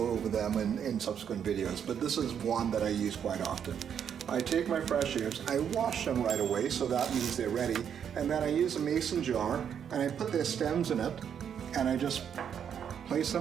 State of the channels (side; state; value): left; quieter; 8.3 dB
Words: over them in subsequent videos, but this is one that I use quite often. I take my fresh herbs, I wash them right away, so that means they're ready, and then I use a mason jar, and I put their stems in it, and I just place